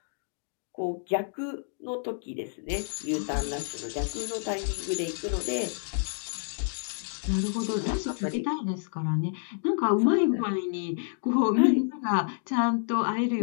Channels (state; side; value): silent; right; 59 dB below the other